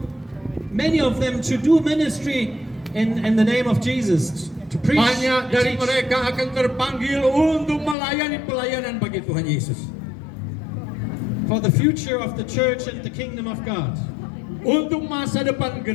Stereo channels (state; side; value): drops out; right; at 8.0 s